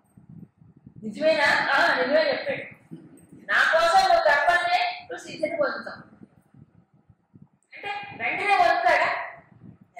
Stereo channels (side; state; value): both; identical; correlation 1.00